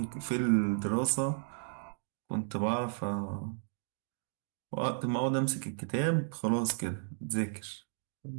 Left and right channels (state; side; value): silent; left; digital silence